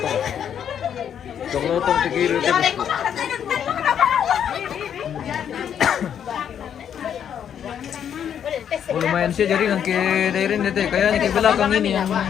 Toklotong tegir dia bosku. Oh, lumayan sih jaringan ke daerah ini teh. Kayaknya ke belakang ini yang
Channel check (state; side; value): quieter; right; 8.8 dB